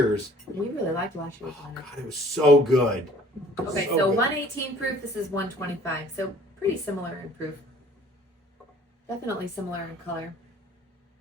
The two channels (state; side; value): normal; both; correlation 0.54